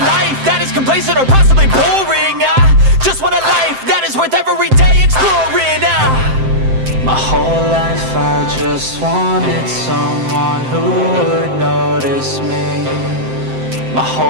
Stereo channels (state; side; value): late; left; 7.7 ms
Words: life that is complacent or possibly boring. I just want a life that is worth every day exploring. My whole life I just wanted someone who would notice me. My